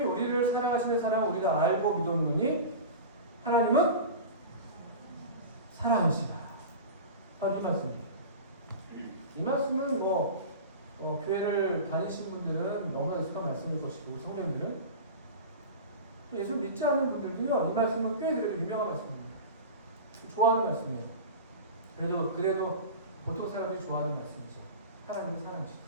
우리를 사랑하시는 사랑을 우리가 알고 믿었느니 하나님은 사랑하시다. 바로 이 말씀이에요. 이 말씀은 교회를 다니신 분들은 너무나 익숙한 말씀일 것이고 성령들은 또 예수 믿지 않는 분들도요, 이 말씀은 꽤 그래도 유명한 말씀입니다. 좋아하는 말씀이에요. 그래도 보통 사람들이 좋아하는 말씀이죠. 하나님은 사랑하시다.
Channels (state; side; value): inverted; both; correlation -0.31